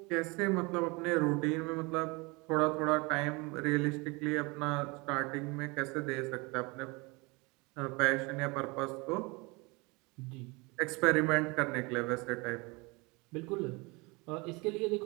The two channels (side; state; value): left; quieter; 26.5 dB